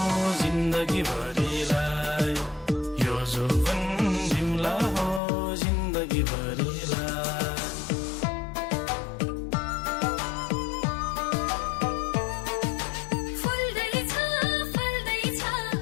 जिन्दगी भरिलाई यो जोवन दिउला हो जिन्दगी भरिलाई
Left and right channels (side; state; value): right; drops out; at 5.2 s